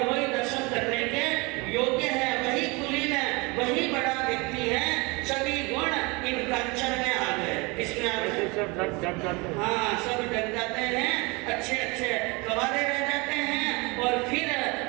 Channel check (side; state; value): left; quieter; 26.7 dB